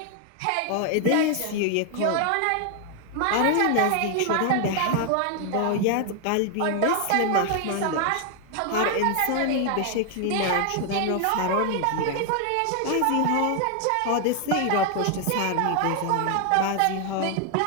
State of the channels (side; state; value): both; different; correlation 0.00